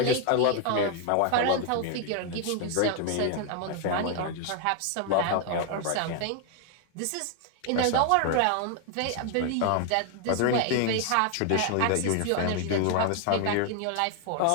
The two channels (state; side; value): different; both; correlation 0.01